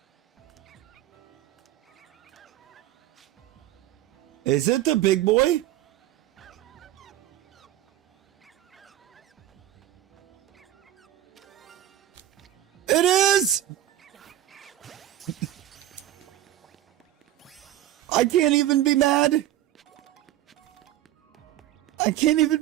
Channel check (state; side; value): quieter; left; 13.3 dB